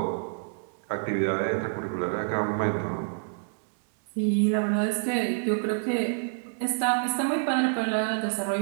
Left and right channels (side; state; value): left; silent; digital silence